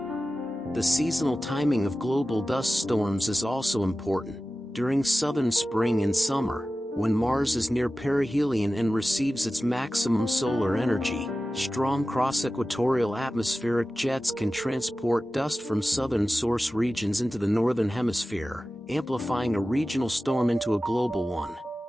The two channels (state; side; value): normal; both; correlation 0.95